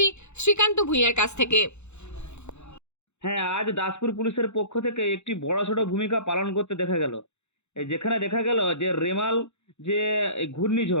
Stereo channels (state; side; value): late; right; 0.82 ms